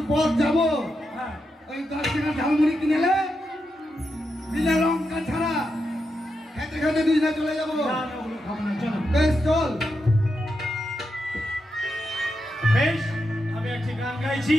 পথ যাবো? ওই 10 টাকা ঝালমুড়ি কিনেলে বিনা লঙ্কা ছাড়া খেতে খেতে দুজনে চলে যাবো। বেশ চল। বেশ আমি একটি গান গাইছি,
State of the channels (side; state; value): both; normal; correlation 0.86